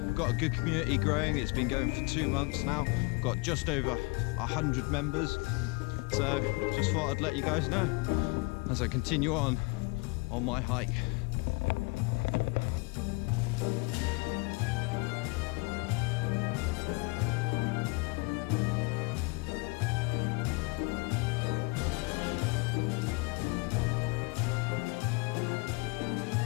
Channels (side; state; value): right; quieter; 28.4 dB